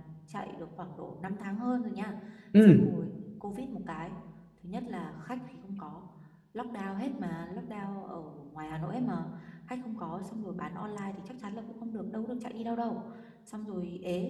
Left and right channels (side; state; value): both; identical; correlation 1.00